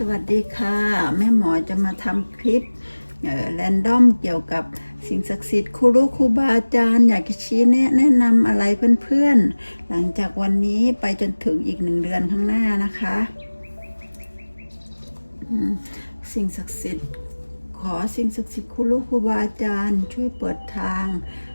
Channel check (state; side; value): inverted; both; correlation -1.00